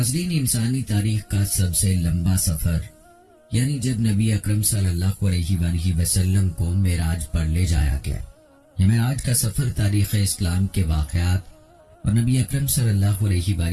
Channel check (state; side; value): identical; both; correlation 1.00